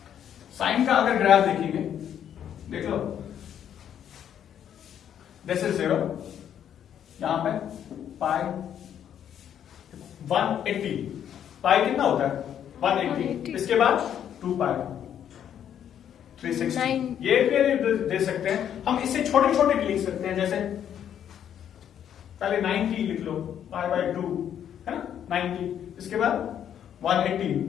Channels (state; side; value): quieter; right; 9.5 dB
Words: साइन का अगर ग्राफ देखेंगे, देख लो, दिस इज 0, यहां पे पाई 180, पाई कितना होता है? 180। इसके बाद 2 पाई 360। ये भी दे सकते हैं हम, इससे छोटे छोटे लिख सकते हैं, जैसे पहले 90 लिख लो, पाई बाय 2 है ना, 90। इसके बाद 180